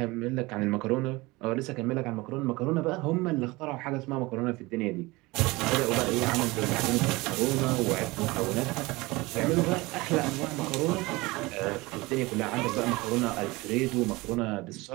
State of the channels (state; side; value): quieter; left; 22.4 dB